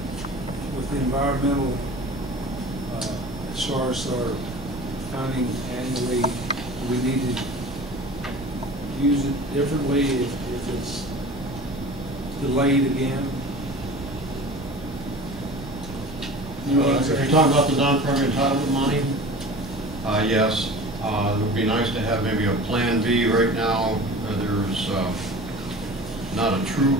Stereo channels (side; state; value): right; noise; rumble, 14 dB below the sound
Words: with the environmental, as far as our funding annually? Do we need to use it differently if it's delayed again? If you're talking about the non-primary entitlement money, yes. It would be nice to have maybe a plan B. Right now, there's not a true